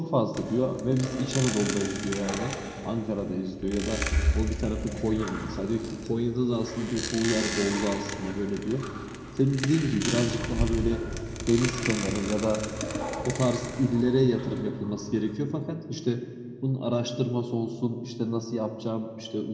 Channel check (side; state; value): both; identical; correlation 1.00